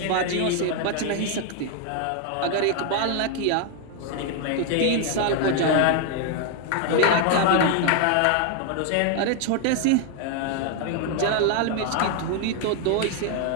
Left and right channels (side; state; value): both; different; correlation 0.00